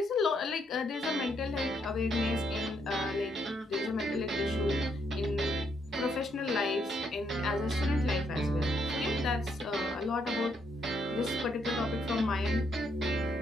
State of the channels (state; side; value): normal; both; correlation 0.74